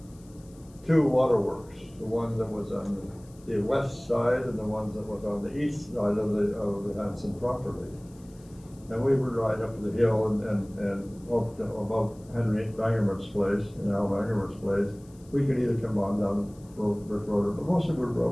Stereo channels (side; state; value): left; noise; hiss, 28 dB below the sound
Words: two waterworks, the one that was on the west side and the one that was on the east side of the Hanson property. And we would ride up the hill and up to above Henry Bangerman's place, Al Bangerman's place. We could either come on down Brick Road, but most of it